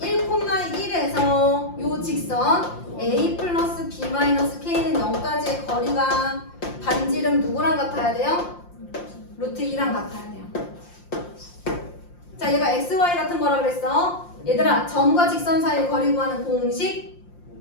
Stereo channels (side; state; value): right; late; 5.7 ms